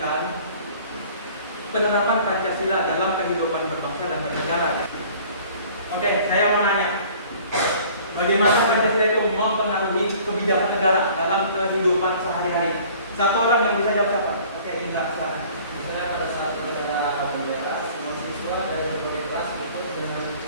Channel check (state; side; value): inverted; both; correlation -0.50